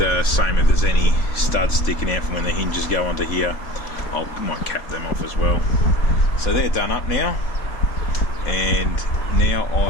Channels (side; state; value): right; late; 3.6 ms